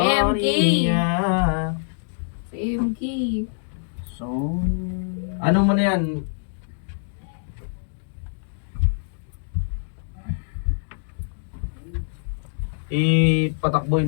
Si MK. Sonia. Ano mo na yan? Ipatakbuhin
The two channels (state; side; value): silent; right; digital silence